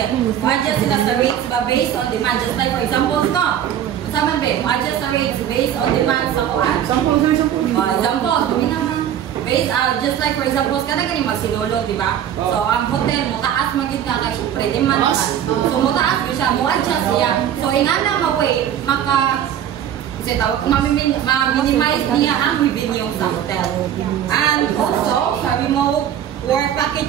Adjust sila sa rates based on demand. Just like, for example, Saman ba, adjust sa rates based on demand sa kuan. Example, based just like for example, kada gani magsinulog, di ba? So ang hotel mo taas magita kay syempre demand ka. So mo taas siya, mo adjust siya. So inana way ma-minimize niya ang revenue sa hotel. And also, sa remote work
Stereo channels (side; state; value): left; quieter; 10.1 dB